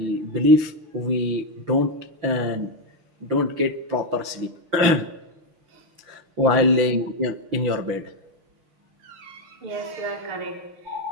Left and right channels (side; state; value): left; late; 5.9 ms